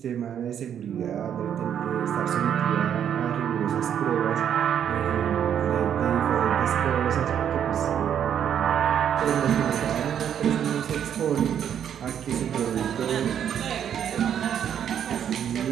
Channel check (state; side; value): quieter; left; 9.1 dB